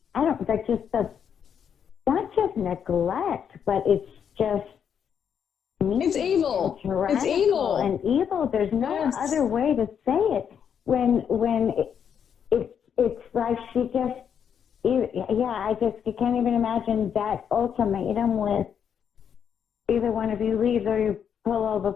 not just neglect, but it's just it's evil. It's evil and evil. There's no other way to say it. When it's like she just you can't even imagine that ultimatum with either one of you leaves or you pull all the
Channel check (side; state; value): right; quieter; 7.9 dB